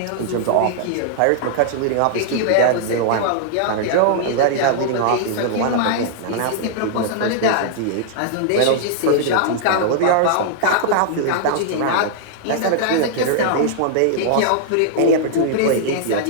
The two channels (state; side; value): different; both; correlation -0.01